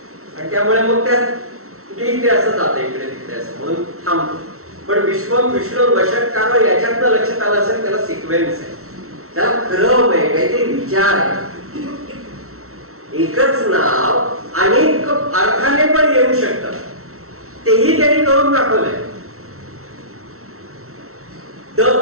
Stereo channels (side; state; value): left; late; 0.63 ms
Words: आणि त्यामुळे मग त्यात ते असं जातं इकडे तिकडे असं म्हणून थांबतो. पण विश्वम विष्णू वषटकार याच्यातनं लक्षात आलं असेल त्याला सिक्वेन्स आहे, त्याला क्रम आहे, काहीतरी विचार आहे. एकच नाव अनेक अर्थाने पण येऊ शकतं, तेही त्यांनी करून दाखवलंय. द